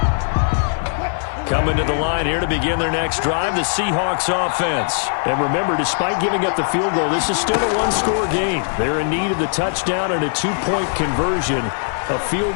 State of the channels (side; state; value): right; silent; 57 dB below the other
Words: Coming to the line here to begin their next drive, the Seahawks offense. And remember, despite giving up the field goal, this is still a one-score game. They're in need of the touchdown and a two-point conversion. A field